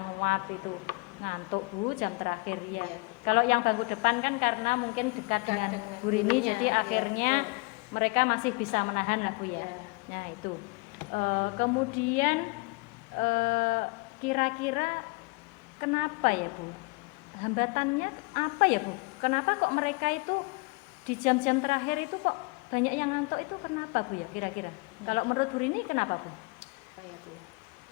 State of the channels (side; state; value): right; quieter; 27.8 dB